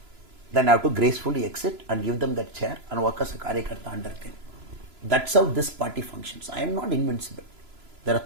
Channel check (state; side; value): late; left; 3.0 ms